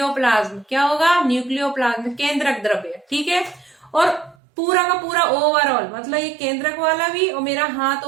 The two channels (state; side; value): drops out; left; at 4.4 s